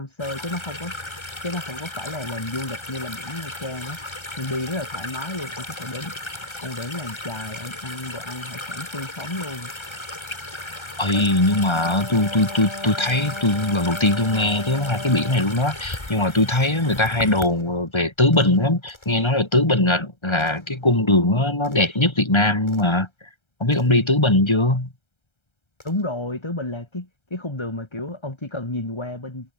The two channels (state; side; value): late; right; 1.3 ms